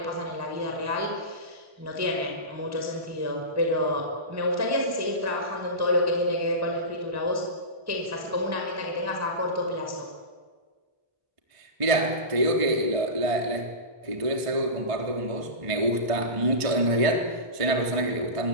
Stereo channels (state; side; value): late; left; 1.5 ms